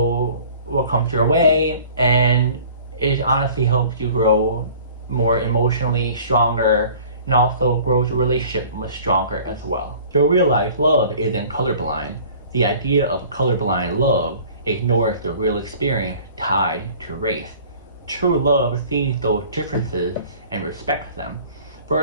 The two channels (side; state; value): both; inverted; correlation -0.48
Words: what comes your way, and it honestly helps you grow more emotionally stronger and also grows your relationship much stronger as well. You'll realize love isn't colorblind. The idea of colorblind love ignores the real experience tied to race. True love sees those differences and respects them. For